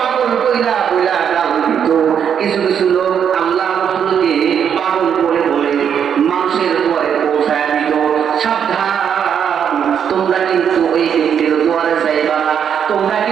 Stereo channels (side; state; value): left; quieter; 8.1 dB